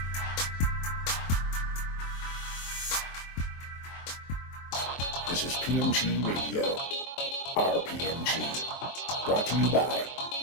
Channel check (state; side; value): late; right; 23 ms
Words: This is PMG Radio, RPMG, brought to you by